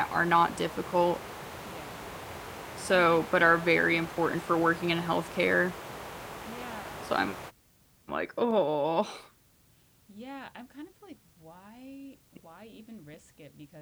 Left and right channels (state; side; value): identical; both; correlation 1.00